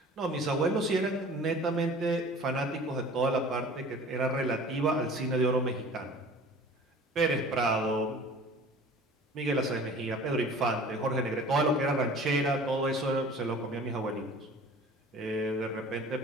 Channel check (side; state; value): both; normal; correlation 0.45